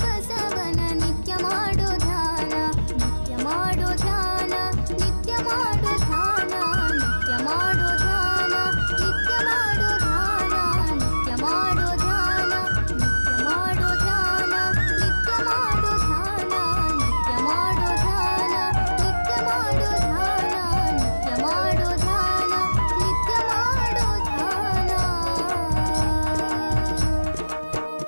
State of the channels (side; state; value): both; inverted; correlation -1.00